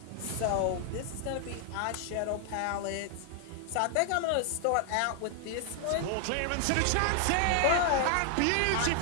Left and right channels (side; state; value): both; different; correlation 0.00